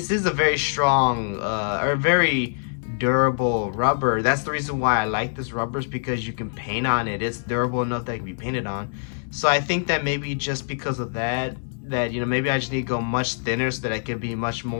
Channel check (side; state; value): right; silent; 62 dB below the other